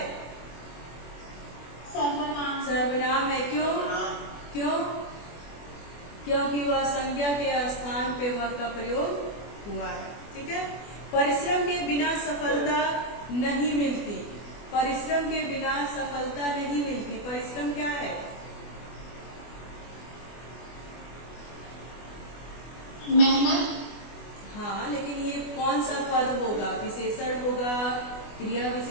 सर्वनाम। सर्वनाम है। क्यों? क्यों? क्योंकि वह संज्ञा के स्थान पे वह का प्रयोग हुआ है। ठीक है। परिश्रम के बिना सफलता नहीं मिलती। परिश्रम के बिना सफलता नहीं मिलती। परिश्रम क्या है? मेहनत। हाँ, लेकिन ये कौन सा पद होगा? विशेषण होगा, क्रिया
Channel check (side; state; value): right; late; 24 ms